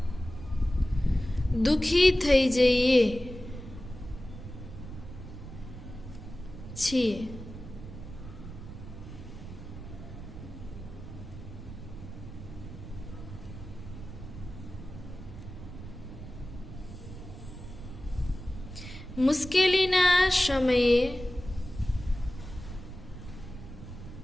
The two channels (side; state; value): right; noise; rumble, 12 dB below the sound